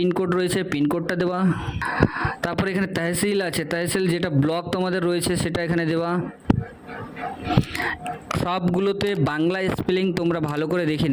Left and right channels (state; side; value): identical; both; correlation 1.00